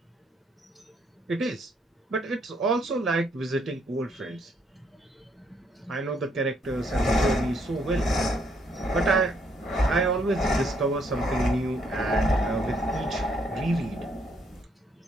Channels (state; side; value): normal; both; correlation 0.71